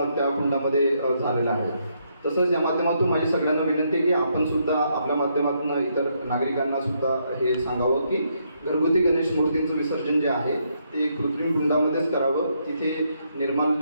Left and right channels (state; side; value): inverted; both; correlation -0.75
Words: त्या कुंडामध्ये झालेलं आहे. तसंच या माध्यमातून माझी सगळ्यांना विनंती आहे की आपण सुद्धा आपल्या माध्यमातून इतर नागरिकांना सुद्धा हे सांगावं की घरगुती गणेश मूर्तींचं विसर्जन जे आहे ते कृत्रिम कुंडामध्येच करावं. तिथे